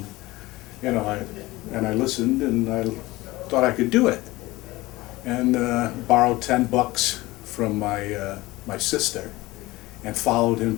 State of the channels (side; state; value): right; quieter; 19.8 dB